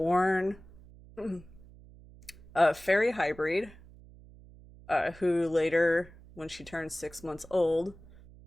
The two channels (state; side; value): noise; right; hum, 21 dB below the sound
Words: a fairy hybrid, who later, when she turned 6 months old,